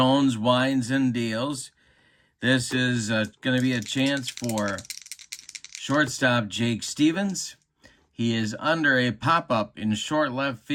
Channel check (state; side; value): identical; both; correlation 1.00